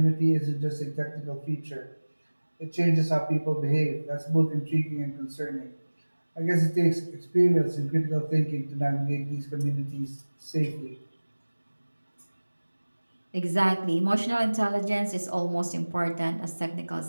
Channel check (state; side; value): inverted; both; correlation -1.00